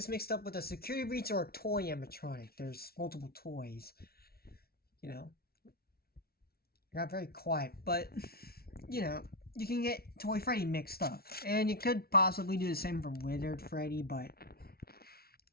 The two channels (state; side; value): late; right; 0.44 ms